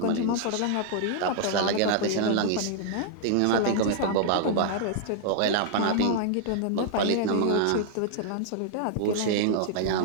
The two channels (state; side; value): different; both; correlation -0.01